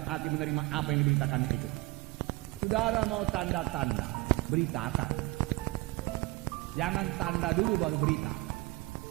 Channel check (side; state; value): left; quieter; 22.1 dB